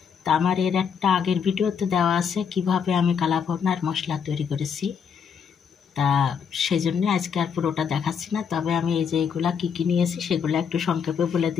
তা আমার এর একটা আগের ভিডিওতে দেওয়া আছে কিভাবে আমি কালাভুনার মশলা তৈরি করেছি। তা সেই জন্য আজকে আর পুরোটা দেখাচ্ছি না, তবে আমি এই যে এগুলা কী কী নিয়েছি সেগুলো একটু সংক্ষেপে বলে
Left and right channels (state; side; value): quieter; right; 7.0 dB